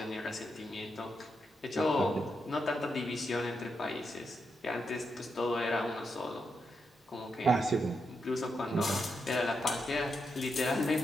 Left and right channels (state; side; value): normal; both; correlation 0.84